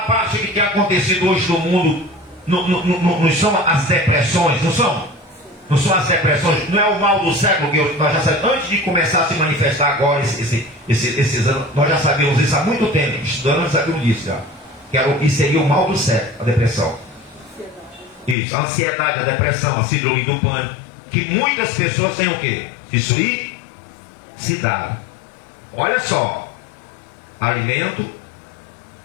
parte que tem acontecido hoje no mundo? Não são as depressões, não são? Não são as depressões, não é o mal do século que nós já sabemos. Antes de começar a se manifestar agora, esses anos, nós já sabíamos isso há muito tempo. Estudando, nós sabíamos disso já. Que seria o mal do século, a depressão. Isso, a ansiedade, a depressão, a síndrome do pânico. Que muitas pessoas têm o quê? Suicidade. Olha só, alimento,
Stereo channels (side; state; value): right; drops out; at 18.4 s